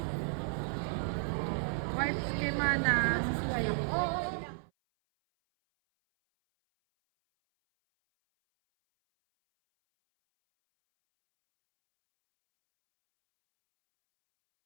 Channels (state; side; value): silent; left; 56 dB below the other